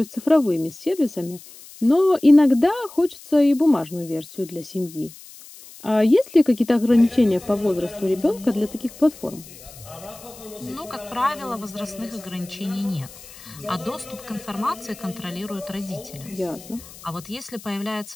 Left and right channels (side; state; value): left; noise; hiss, 19 dB below the sound